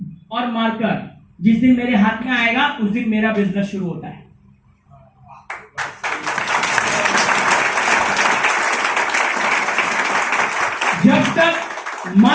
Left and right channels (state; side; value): identical; both; correlation 1.00